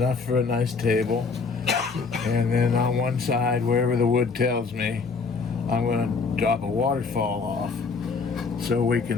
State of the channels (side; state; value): right; quieter; 4.7 dB